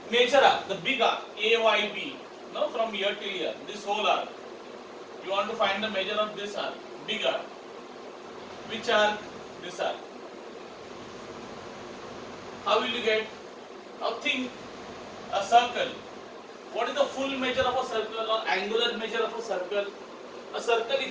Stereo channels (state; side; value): identical; both; correlation 1.00